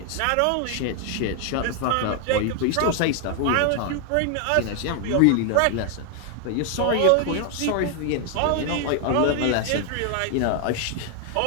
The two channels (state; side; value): different; both; correlation 0.00